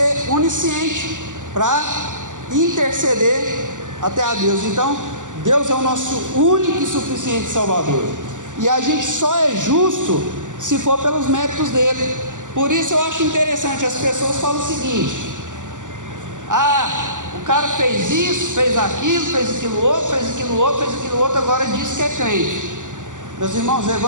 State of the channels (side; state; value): left; late; 0.87 ms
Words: onisciente para interceder até a Deus. Então, Deus é o nosso único e suficiente Salvador. E a gente só é justo se for pelos méritos dele. Por isso eu acho interessante, as pessoas falam o seguinte: o cara fez isso, fez aquilo outro, agora diz que é crente. Meus irmãos, o